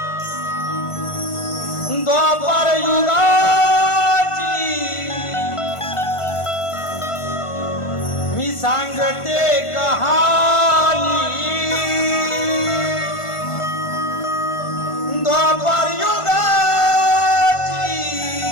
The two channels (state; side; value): late; right; 1.5 ms